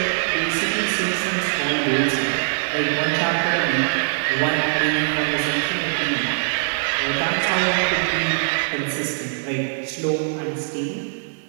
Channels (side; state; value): left; silent; digital silence